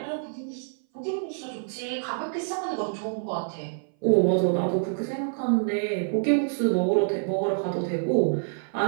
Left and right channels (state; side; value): silent; left; 58 dB below the other